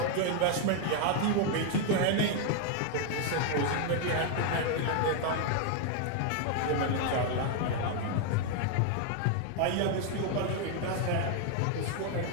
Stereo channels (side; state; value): both; different; correlation 0.00